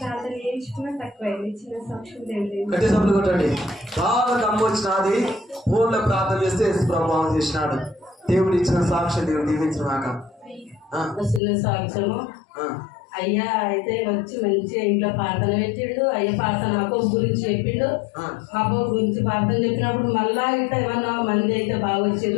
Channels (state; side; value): drops out; right; at 11.4 s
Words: ప్రార్థన చేయించుకున్నా తక్కువైంది. చిన్న సాక్ష్యం దేవుడు బాగా దమ్ము వచ్చినది. ఫోన్లో ప్రార్థన చేస్తే ప్రభావం చేసినాడు. దేవుడు ఇచ్చిన సాక్ష్యం దేవుడు దీవించినాక చిన్న సాక్ష్యము. అయ్యా అయితే వచ్చి మంచిగా ఇంట్లో ప్రార్థన పెట్టిండు. అయ్య ప్రార్థన అబ్బోబు గురించి చెప్పిండు. అబ్బోబు గురించి ప్రార్థన చెప్పినప్పుడు మళ్ళా ఇట్లా ఏమన్నా మంది అయితే బాగా